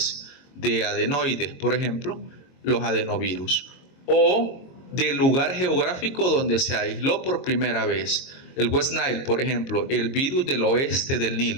de adenoides, por ejemplo, los adenovirus. O del lugar geográfico donde se aisló por primera vez. El West Nile, por ejemplo, el virus del oeste del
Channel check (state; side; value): late; right; 22 ms